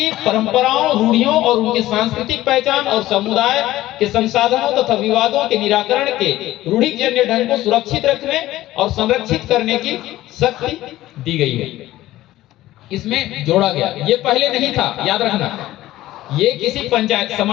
परंपराओं, रूढ़ियों और उनकी सांस्कृतिक पहचान और समुदाय के संसाधनों तथा विवादों के निराकरण के रूढ़िजन्य ढंग को सुरक्षित रखने और संरक्षित करने की शक्ति दी गई है। इसमें जोड़ा गया, ये पहले नहीं था, याद रखना। ये किसी पंचायत,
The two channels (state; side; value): quieter; right; 15.6 dB